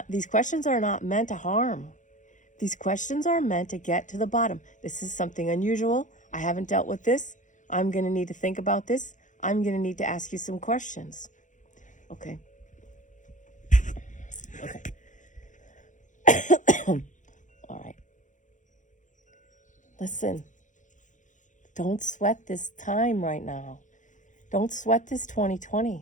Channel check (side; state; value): right; late; 0.36 ms